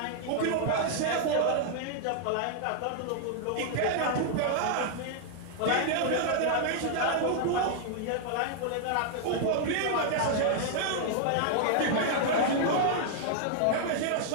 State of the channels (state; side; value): different; both; correlation -0.01